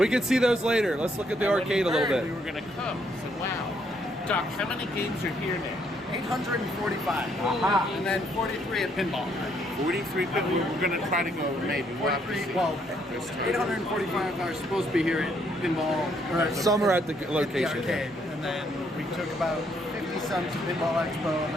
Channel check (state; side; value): normal; both; correlation 0.71